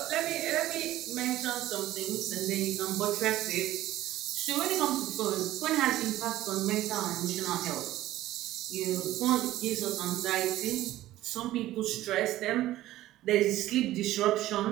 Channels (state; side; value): quieter; left; 15.0 dB